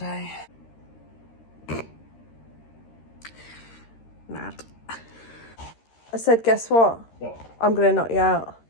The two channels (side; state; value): right; late; 13 ms